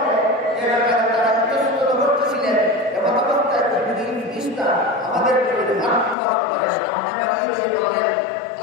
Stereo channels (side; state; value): right; drops out; at 6.2 s